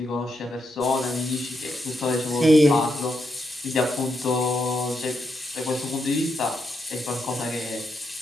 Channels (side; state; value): both; normal; correlation 0.81